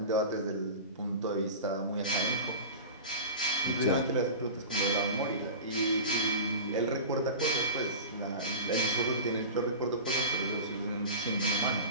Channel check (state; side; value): inverted; both; correlation -0.31